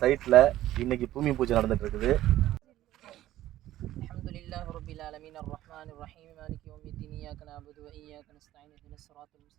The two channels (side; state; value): left; quieter; 14.1 dB